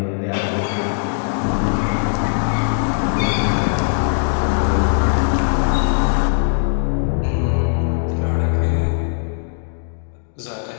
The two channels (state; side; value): silent; right; digital silence